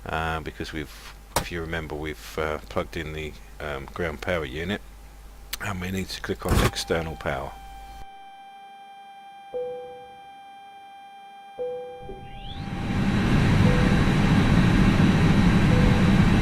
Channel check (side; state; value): both; identical; correlation 1.00